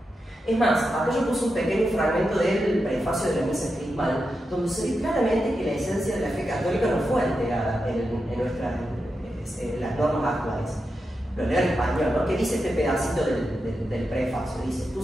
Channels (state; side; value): normal; both; correlation 0.88